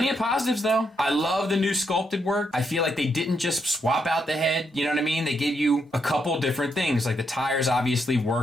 of positives though. I love the new sculpted work. I feel like they didn't just swap out the head, you know what I mean? They gave you a couple different things. Like the tires obviously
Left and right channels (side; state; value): both; normal; correlation 0.79